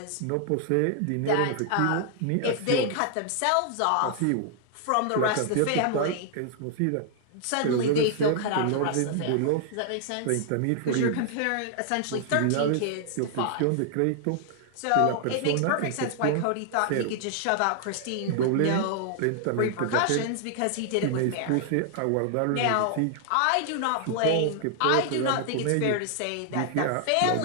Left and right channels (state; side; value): different; both; correlation 0.00